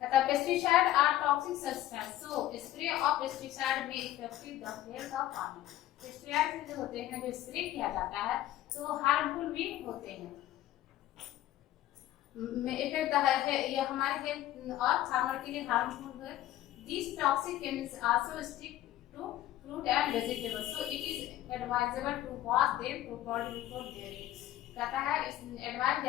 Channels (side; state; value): right; quieter; 13.8 dB